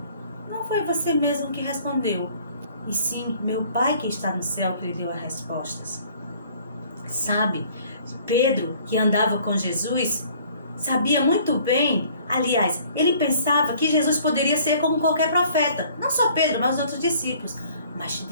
não foi você mesmo que respondeu, e sim meu Pai que está no céu que lhe deu as respostas. Sabe, Pedro, que andava com Jesus, sabia muito bem, aliás, ele pensava que Jesus poderia ser como qualquer profeta, não só Pedro, mas os outros discípulos. Mas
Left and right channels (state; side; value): inverted; both; correlation -0.56